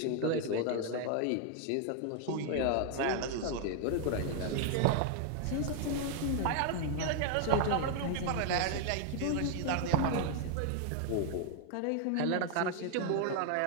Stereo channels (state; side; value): different; both; correlation 0.00